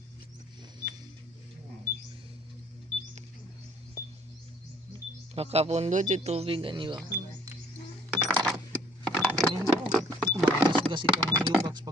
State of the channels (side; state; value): both; normal; correlation 0.59